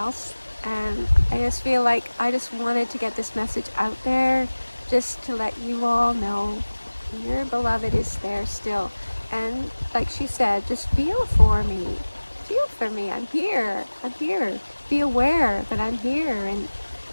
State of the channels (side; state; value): both; inverted; correlation -1.00